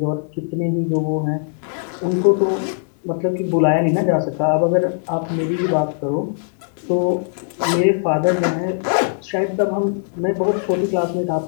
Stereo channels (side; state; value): right; silent; digital silence